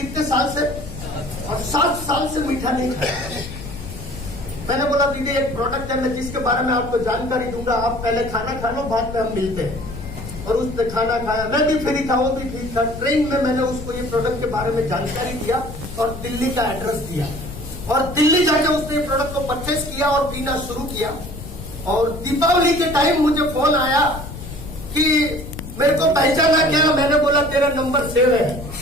साल से? और 7 साल से मीठा नहीं खाया। मैंने बोला दीदी एक प्रोडक्ट है, मैं जिसके बारे में आपको जानकारी दूंगा, आप पहले खाना खा लो, बाद में हम मिलते हैं। और उसने खाना खाया, मैं भी फ्री था, वो भी फ्री था। ट्रेन में मैंने उसको ये प्रोडक्ट के बारे में जानकारी दिया और दिल्ली का एड्रेस दिया, और दिल्ली जाके उसने प्रोडक्ट को परचेस किया और पीना शुरू किया। और दीपावली के टाइम मुझे फोन आया कि मेरे को पहचाना क्या? मैंने बोला तेरा नंबर सेव है।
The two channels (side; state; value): left; noise; rumble, 11 dB below the sound